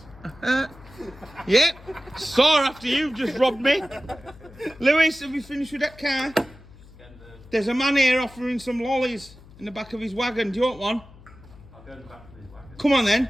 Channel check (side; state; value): left; noise; hum, 22 dB below the sound